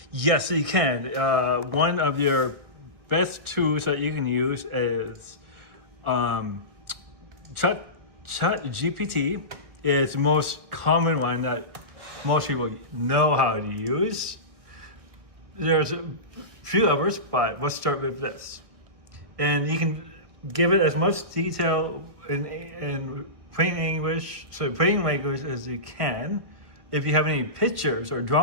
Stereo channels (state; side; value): late; left; 1.6 ms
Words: Yes, you can. One of your best tools that you can use is ChatGPT. Is the most common one that most people know how to use. There's a few others, but let's start with this. And you can give it as much detail in plain English, so plain language as you can. If you have any pictures or